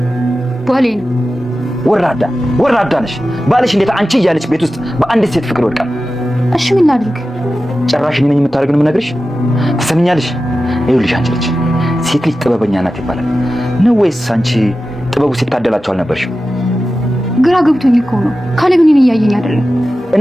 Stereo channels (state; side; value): normal; both; correlation 0.93